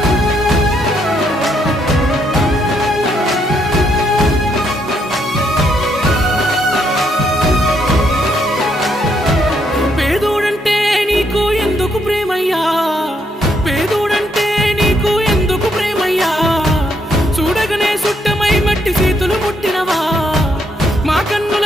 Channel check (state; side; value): normal; both; correlation 0.74